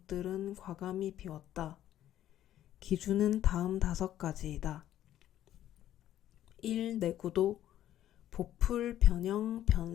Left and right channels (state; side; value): quieter; right; 12.3 dB